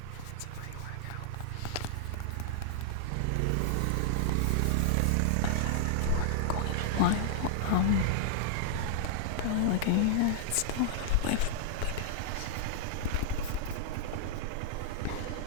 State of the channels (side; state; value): both; different; correlation -0.01